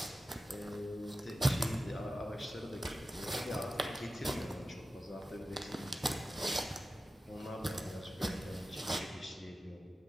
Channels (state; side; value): normal; both; correlation 0.94